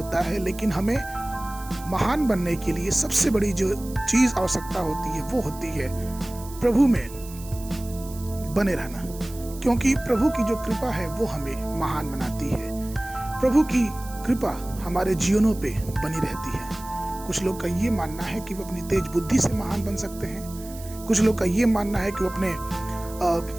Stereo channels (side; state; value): right; noise; hiss, 17 dB below the sound